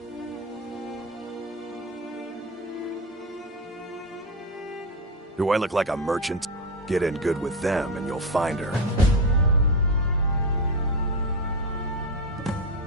Do I look like a merchant? Get in good with them and you'll find her.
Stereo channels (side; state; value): both; normal; correlation 0.15